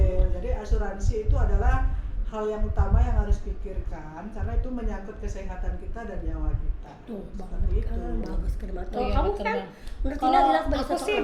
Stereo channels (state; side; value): identical; both; correlation 1.00